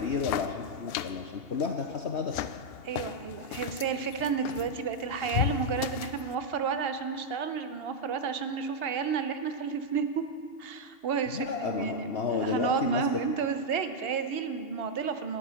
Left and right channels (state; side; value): late; right; 2.8 ms